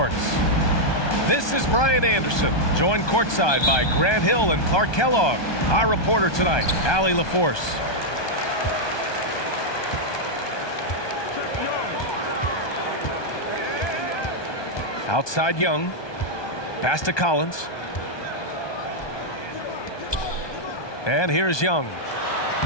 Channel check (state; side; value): late; right; 1.2 ms